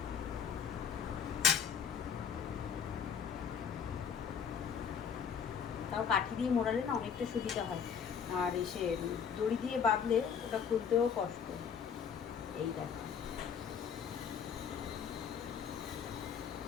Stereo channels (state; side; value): quieter; right; 7.1 dB